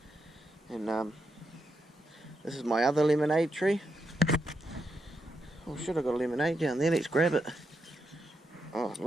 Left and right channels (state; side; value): normal; both; correlation 0.83